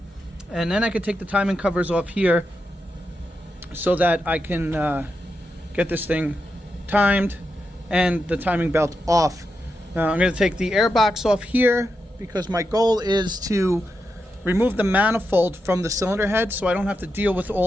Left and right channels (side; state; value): both; normal; correlation 0.86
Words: And then I can take the timing covers off here so that I can get this thing timed and the timing belt off. Now I'm going to take the air box off here because my goal is to remove the manifold from the cylinder head so I don't have to deal with